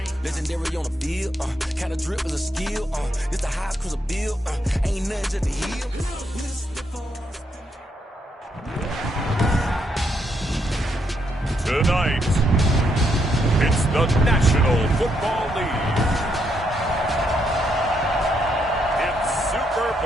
Legendary on the field. Kinda drip is a skill. This the highest cruiser bill. Ain't nothing just a heel. Tonight, it's the National Football League. It's Super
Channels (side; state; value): both; normal; correlation 0.77